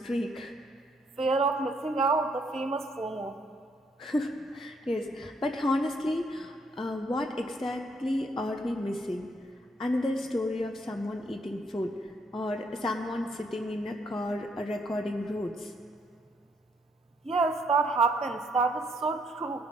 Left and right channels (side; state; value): both; normal; correlation 0.71